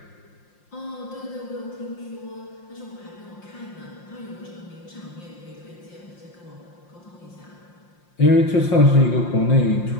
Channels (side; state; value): right; late; 5.7 ms